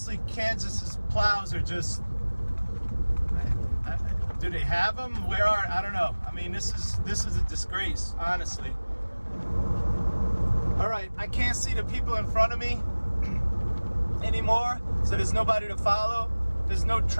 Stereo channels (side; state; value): both; inverted; correlation -1.00